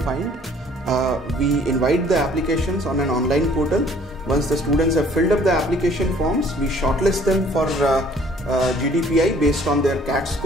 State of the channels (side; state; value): both; normal; correlation 0.57